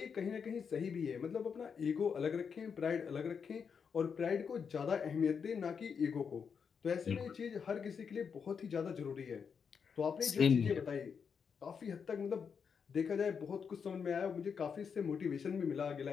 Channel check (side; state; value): right; quieter; 6.4 dB